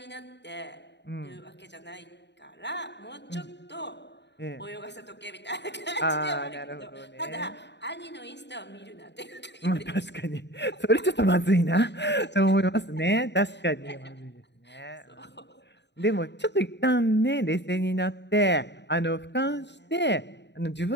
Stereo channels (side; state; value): right; late; 0.51 ms